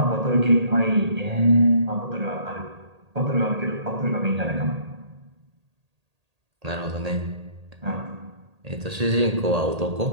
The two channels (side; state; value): left; late; 1.8 ms